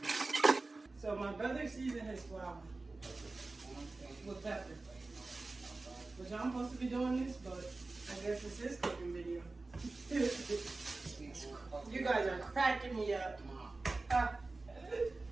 So my brother seasoned his flour with pepper. Which I'm supposed to be doing this, but I guess it's his cooking video. You guys are cracking me up.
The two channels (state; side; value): quieter; left; 3.4 dB